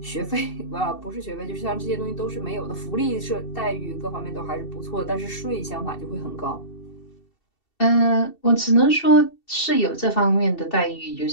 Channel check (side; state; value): right; late; 2.7 ms